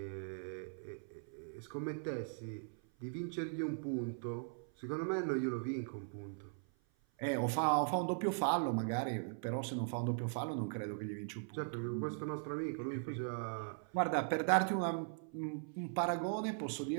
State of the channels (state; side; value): silent; left; 51 dB below the other